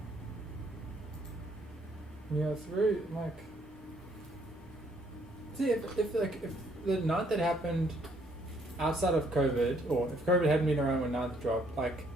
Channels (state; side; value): normal; both; correlation 0.66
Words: Yeah, it's very like. See, if the night that happened outside of COVID, or if COVID hadn't been around when ninth dropped, like